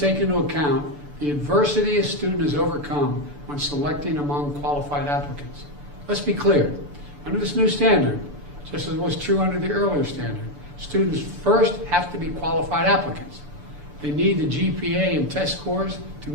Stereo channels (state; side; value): late; left; 6.9 ms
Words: into account the adversity a student has overcome when selecting among qualified applicants. Let's be clear, under this new standard, just as was true under the earlier standard, students first have to be qualified applicants. They need the GPA and test scores to